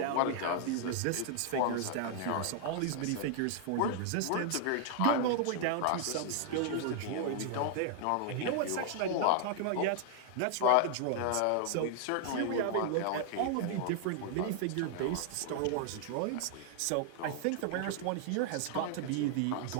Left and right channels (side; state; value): both; different; correlation 0.00